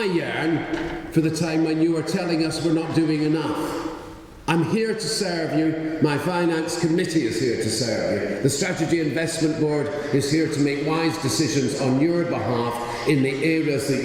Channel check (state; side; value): identical; both; correlation 1.00